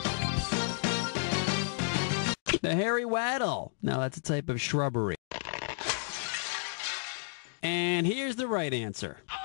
The hairy waddle. Now that's a type of shrubbery. And here's the right answer.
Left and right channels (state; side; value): silent; right; digital silence